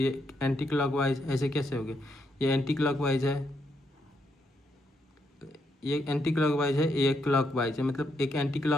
एंटी क्लॉकवाइज, ऐसे कैसे हो गया, ये एंटी क्लॉकवाइज है, ये एंटी क्लॉकवाइज है, ये क्लॉकवाइज है, मतलब एक एंटी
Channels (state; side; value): normal; both; correlation 0.78